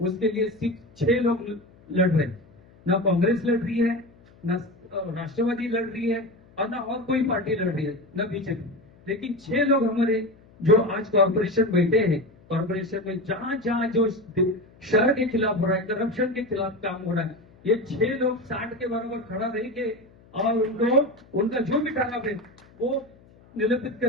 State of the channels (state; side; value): noise; left; hum, 27 dB below the sound